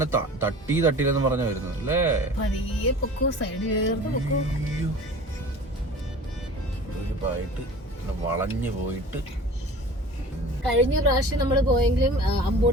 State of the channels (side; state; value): both; normal; correlation 0.41